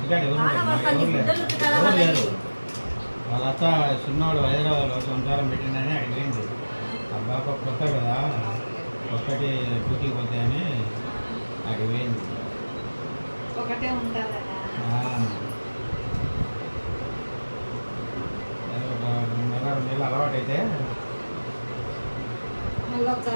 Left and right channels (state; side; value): inverted; both; correlation -1.00